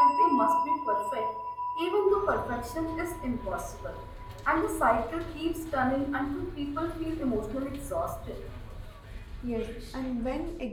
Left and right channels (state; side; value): identical; both; correlation 1.00